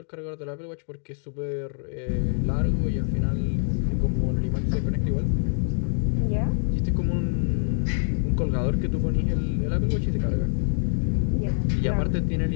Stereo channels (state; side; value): silent; right; digital silence